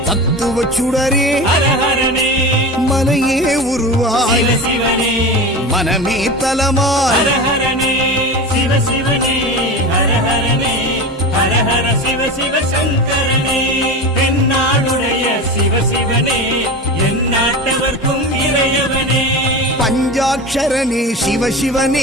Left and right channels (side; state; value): both; normal; correlation 0.27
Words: தத்துவ சுடரே ஹரஹரனே, மனையே உருவாய் சிவசிவனே, மனமே தலமாய். ஹரஹரனே சிவசிவனே, ஹரஹரனே, ஹரஹர சிவ சிவ சங்கரனே, தென்னாடுடைய சிவசிவனே, என் நாட்டவர்க்கும் இறையவனே. பஞ்சாட்சரனே